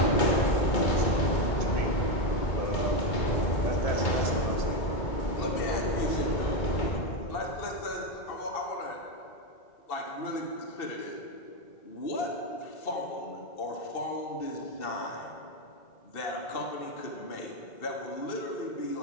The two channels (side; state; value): right; late; 2.6 ms